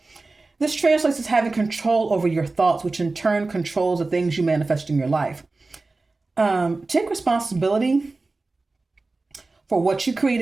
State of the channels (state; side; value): quieter; left; 3.5 dB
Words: This translates as having control over your thoughts, which in turn controls the things you manifest in your life. Take responsibility for what you create